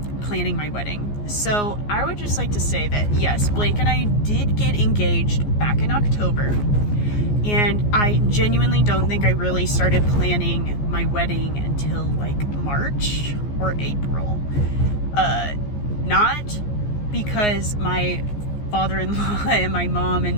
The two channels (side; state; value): right; late; 14 ms